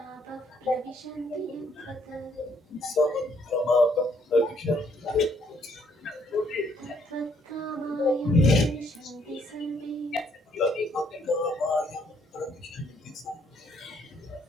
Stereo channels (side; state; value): both; normal; correlation 0.68